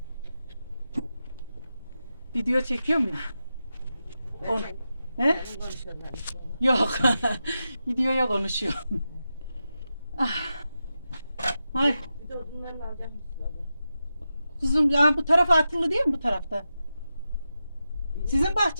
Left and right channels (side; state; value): both; inverted; correlation -0.90